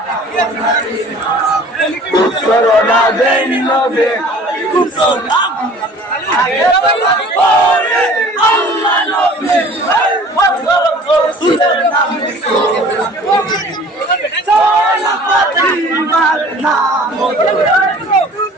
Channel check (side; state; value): both; normal; correlation 0.48